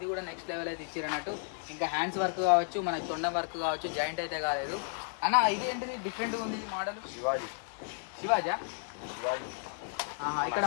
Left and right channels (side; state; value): right; silent; 56 dB below the other